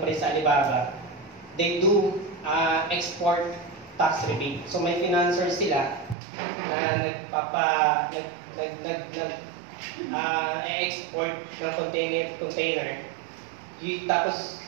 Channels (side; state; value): left; drops out; at 6.2 s